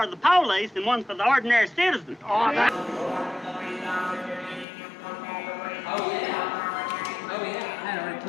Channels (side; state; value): right; drops out; at 4.7 s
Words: the police and one for the ordinary citizen. Oh, yeah. I had already